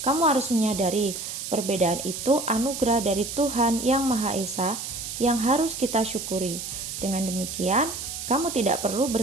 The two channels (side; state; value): right; noise; hiss, 7 dB below the sound